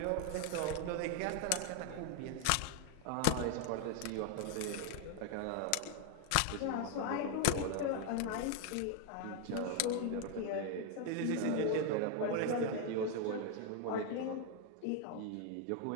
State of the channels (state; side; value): different; both; correlation 0.01